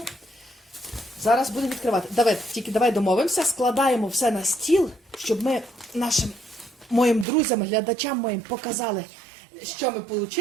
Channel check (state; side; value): drops out; left; at 7.2 s